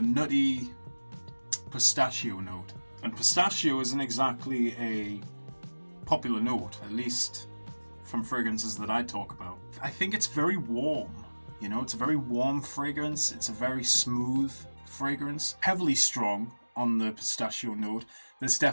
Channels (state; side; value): inverted; both; correlation -1.00